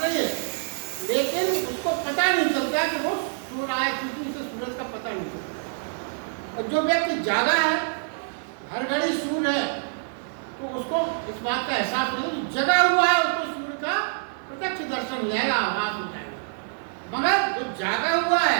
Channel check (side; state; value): left; silent; digital silence